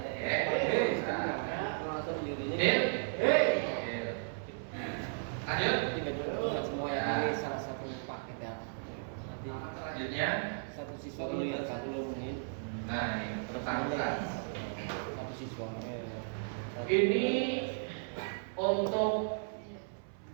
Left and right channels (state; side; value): silent; left; 54 dB below the other